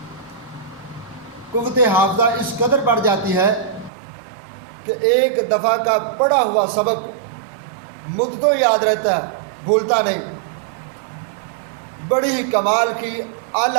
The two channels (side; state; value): left; drops out; at 3.9 s